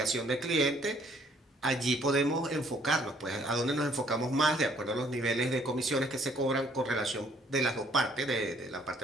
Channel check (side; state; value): both; normal; correlation 0.63